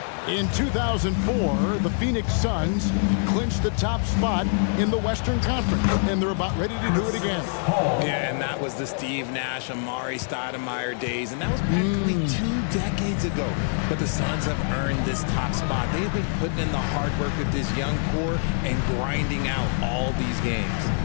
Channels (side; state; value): right; silent; 61 dB below the other